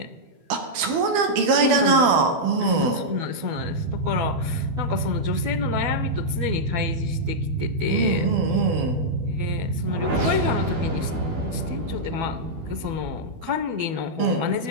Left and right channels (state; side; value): late; left; 12 ms